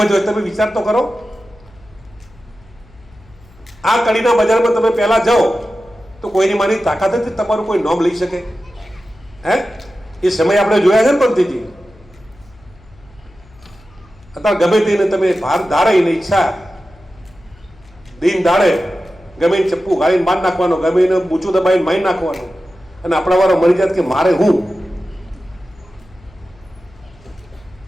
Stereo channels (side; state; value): left; noise; hum, 26 dB below the sound